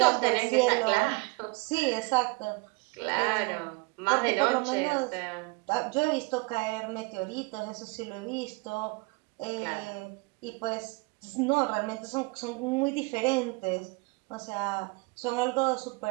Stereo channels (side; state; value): left; quieter; 27.6 dB